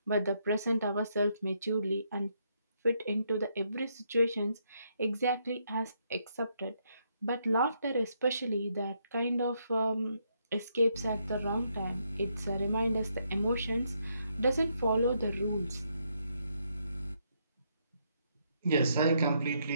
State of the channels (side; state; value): both; inverted; correlation -0.75